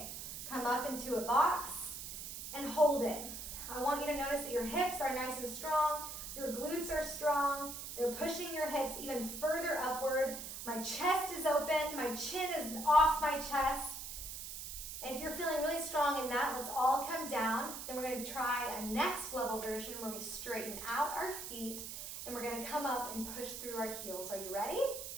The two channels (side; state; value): right; noise; hiss, 8 dB below the sound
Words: Come up into a box and hold it. I want you to notice that your hips are nice and strong. Your glutes are strong. They're pushing your hips even further upward. My chest is open. My chin is off my chest. And if you're feeling really strong in that, let's all come down. Then we're going to try a next level version where we straighten out our feet. And we're going to come up and push through our heels. Are you ready?